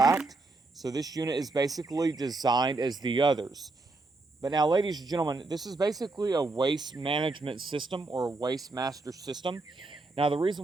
So this unit is basically designed as the others. But now, ladies and gentlemen, this is basically a waste management system or a waste master system. Now, the reason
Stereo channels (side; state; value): left; quieter; 3.3 dB